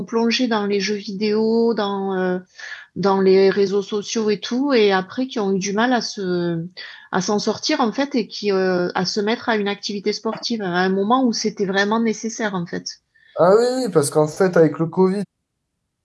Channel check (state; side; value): identical; both; correlation 1.00